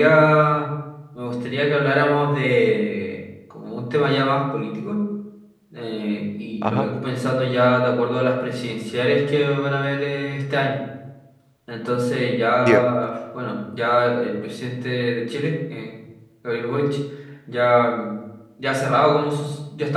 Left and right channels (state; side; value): identical; both; correlation 1.00